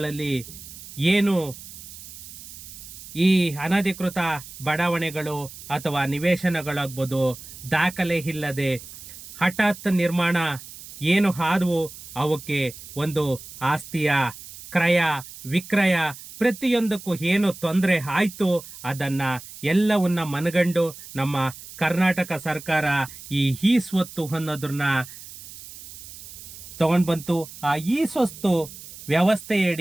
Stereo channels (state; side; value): noise; right; hiss, 15 dB below the sound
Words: ಏನು ಈ ಅನಧಿಕೃತ ಬಡಾವಣೆಗಳು ಅಥವಾ ನಿವೇಶನಗಳಾಗ್ಬೋದು, ದಾಖಲೆ ಇಲ್ಲದೆ ಹಠಾತ್ ನಿರ್ಮಾಣ ಏನು ಆದವು, ಅವಕ್ಕೆ ಒಂದು ಆಸ್ತಿಯ ಕ್ರಯ ವಿಕ್ರಯ ಪ್ರತಿಯೊಂದಕ್ಕೂ ಏನು ತೊಂದರೆ ಆಯ್ತು, ಅದನ್ನ ಎಲ್ಲವನ್ನ ಮನಗಂಡು ನಮ್ಮ ಕರ್ನಾಟಕ ಸರ್ಕಾರ ಈ ಸ್ವತ್ತು ಅನ್ನೋದನ್ನ ತಗೊಂಡ್ ಬಂತು. ಆ ಈ ಸ್ವತ್ತು